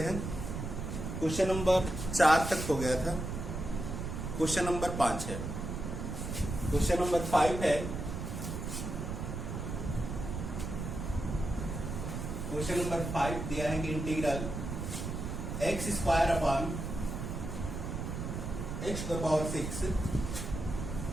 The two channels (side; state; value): right; noise; rumble, 5 dB below the sound